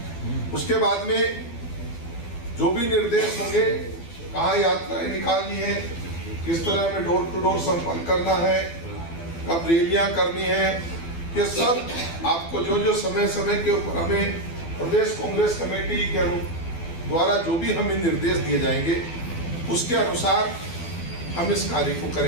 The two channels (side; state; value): right; late; 12 ms